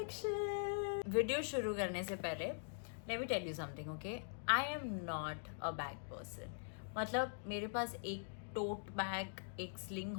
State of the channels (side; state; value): right; silent; digital silence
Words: वीडियो शुरू करने से पहले let me tell you something, okay? I am not a bag person. मतलब मेरे पास एक टोट बैग, एक स्लिंग